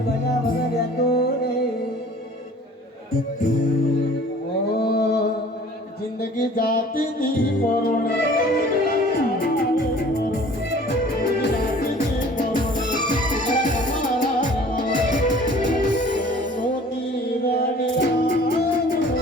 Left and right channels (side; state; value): both; normal; correlation 0.49